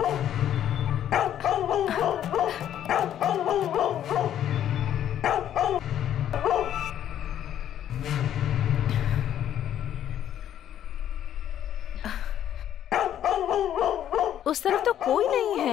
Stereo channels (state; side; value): quieter; right; 10.7 dB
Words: उस तरफ तो कोई नहीं